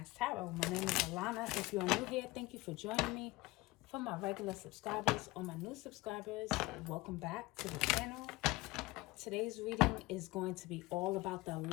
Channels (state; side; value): quieter; right; 20.9 dB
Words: Tarot. My name is Alana. If you are new here, thank you for joining me. For my regular subscribers or my new subscribers, welcome back to the channel. Today's reading is going to be all about the